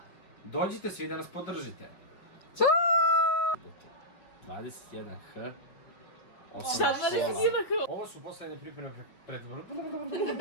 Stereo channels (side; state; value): right; late; 5.5 ms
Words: Dođite svi da nas podržite. 21H. Ovo su poslednje pripreme pred...